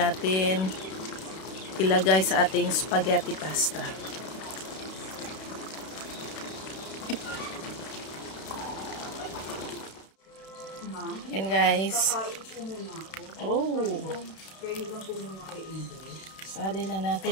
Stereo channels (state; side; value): late; right; 32 ms